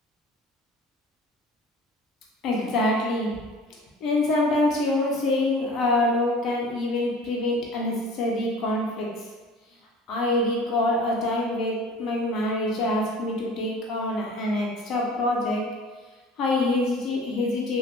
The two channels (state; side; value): normal; both; correlation 0.43